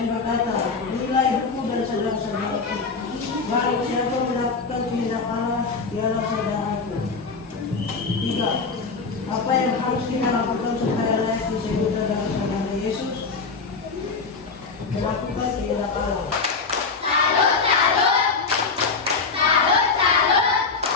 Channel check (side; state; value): right; quieter; 4.6 dB